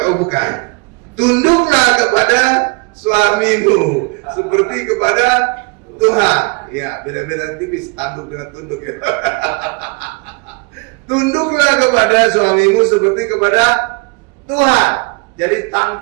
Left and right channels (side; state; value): left; quieter; 29.8 dB